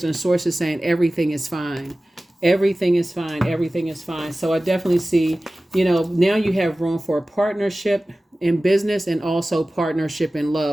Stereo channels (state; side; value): normal; both; correlation 0.97